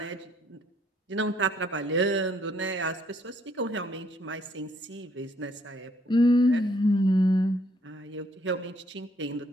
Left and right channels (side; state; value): both; normal; correlation 0.67